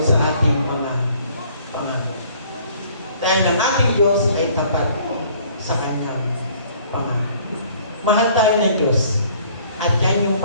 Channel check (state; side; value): inverted; both; correlation -0.57